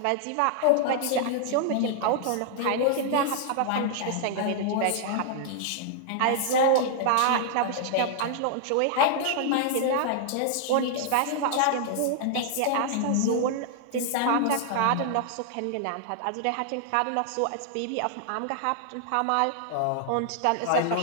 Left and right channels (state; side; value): different; both; correlation -0.01